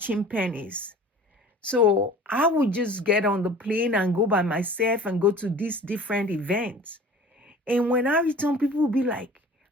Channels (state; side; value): normal; both; correlation 0.44